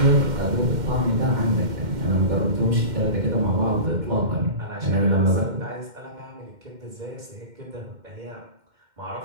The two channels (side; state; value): left; late; 2.1 ms